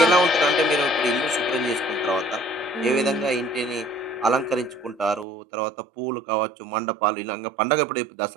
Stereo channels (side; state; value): left; drops out; at 5.2 s